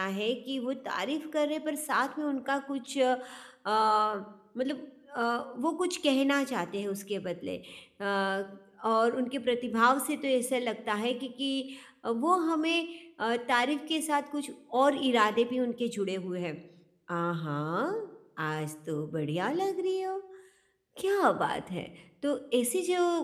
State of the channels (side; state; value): both; identical; correlation 1.00